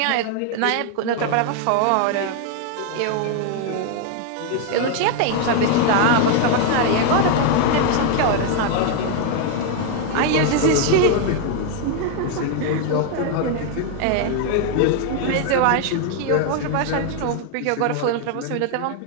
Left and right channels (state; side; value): different; both; correlation 0.00